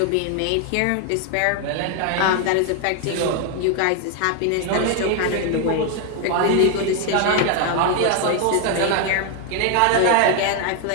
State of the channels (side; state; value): both; different; correlation 0.01